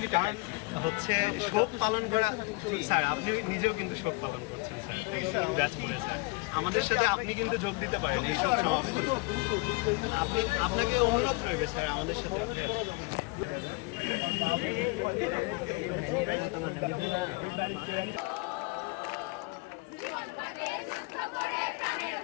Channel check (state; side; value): quieter; right; 27.3 dB